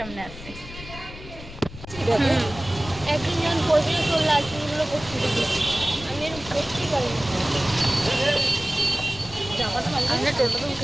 আসছে। একদিন যখন করবি তোর লাইসেন্সগুলো করতে দিবি, আমি এরকম করতেই পারি না। আমরা টোটোতে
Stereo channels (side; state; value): left; noise; rumble, 14 dB below the sound